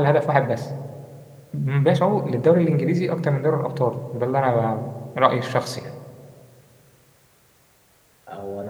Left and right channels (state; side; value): identical; both; correlation 1.00